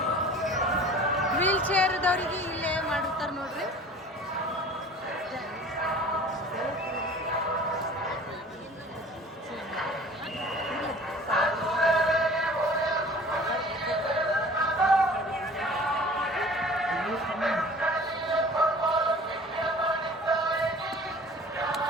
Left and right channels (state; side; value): normal; both; correlation 0.46